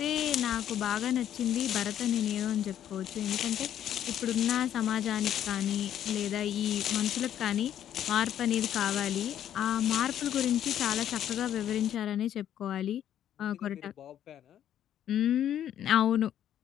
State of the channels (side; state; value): right; quieter; 10.6 dB